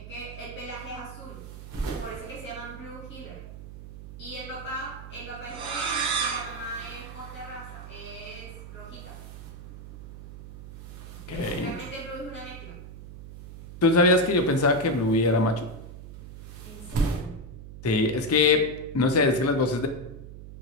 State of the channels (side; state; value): right; noise; hum, 13 dB below the sound